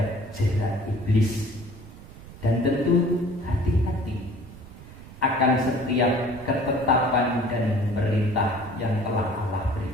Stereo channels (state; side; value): noise; right; rumble, 17 dB below the sound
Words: jerat iblis. Dan tentu hati-hati akan setiap ketetapan dan perintah yang telah Allah